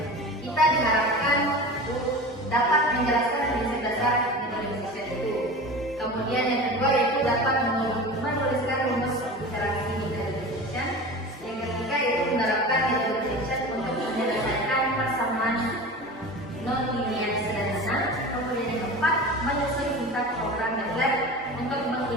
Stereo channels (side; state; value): both; normal; correlation 0.33